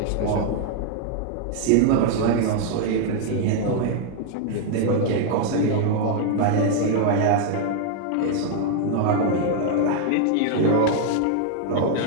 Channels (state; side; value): different; both; correlation 0.00